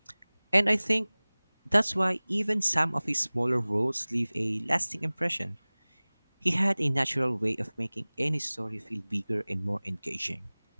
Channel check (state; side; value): inverted; both; correlation -1.00